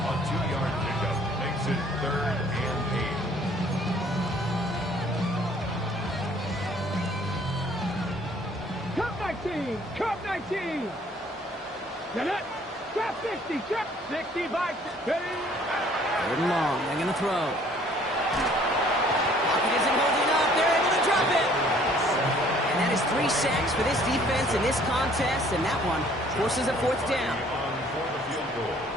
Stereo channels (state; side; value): normal; both; correlation 0.58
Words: A 2-yard pickup makes it 3rd and 8. Cup 19! Cup 19! Get it! Trap 60! Trap 65! Third and long. They're going to throw. Pocket isn't holding up. They're able to drop it. And that is 3 sacks for this defense in this contest, and that one forces a 4th down. On for the field goal.